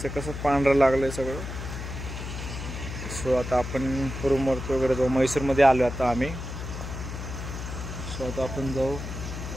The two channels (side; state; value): left; noise; hum, 7 dB below the sound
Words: कसं पांढरं लागलं आहे सगळं. सो आता आपण रूमवरती वगैरे जाऊ. मैसूरमध्ये आलो आता आम्ही. सो आता आपण जाऊ.